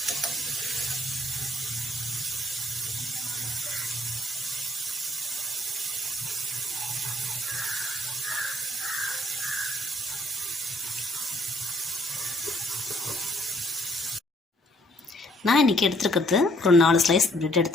நான் இன்றைக்கி எடுத்துருக்கிறது ஒரு 4 ஸ்லைஸ் ப்ரெட்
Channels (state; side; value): normal; both; correlation 0.64